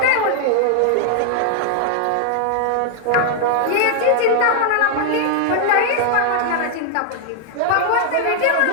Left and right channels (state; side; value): different; both; correlation 0.00